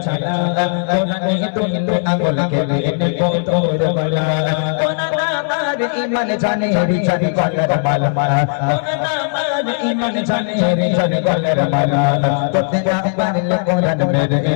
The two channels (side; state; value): right; silent; 68 dB below the other